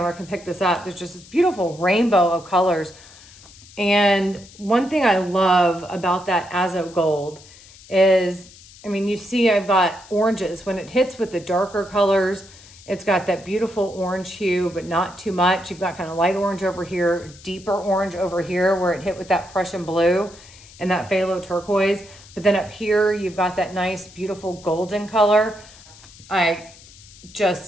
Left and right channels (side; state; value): left; noise; hiss, 22 dB below the sound